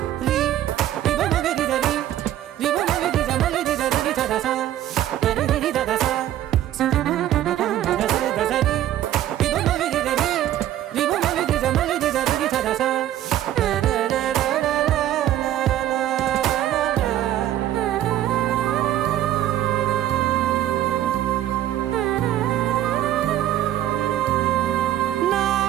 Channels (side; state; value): left; quieter; 12.5 dB